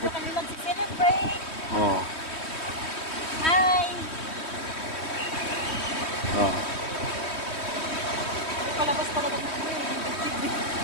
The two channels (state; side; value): late; right; 3.1 ms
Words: kami mag-celebrate. Oh. Hi! Oh. Palabas talaga ng ano